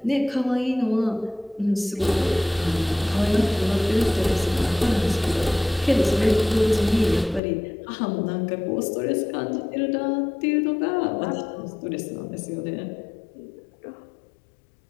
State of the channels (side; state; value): right; drops out; at 7.4 s